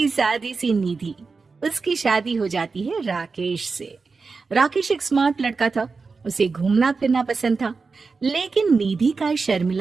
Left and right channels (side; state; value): left; quieter; 4.5 dB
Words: सादी सी निधि, उसकी शादी हो जाती है राकेश से। राकेश एक स्मार्ट लड़का था, उसे घूमना फिरना पसंद था, लेकिन निधि का